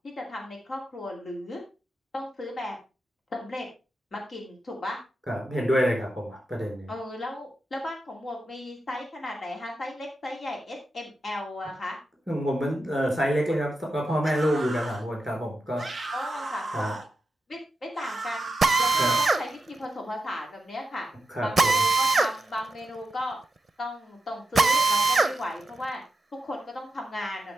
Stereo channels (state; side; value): normal; both; correlation 0.88